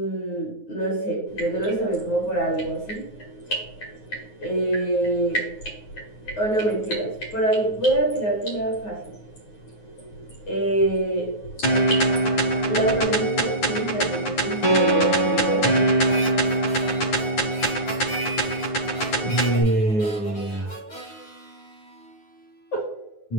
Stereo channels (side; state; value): right; late; 9.5 ms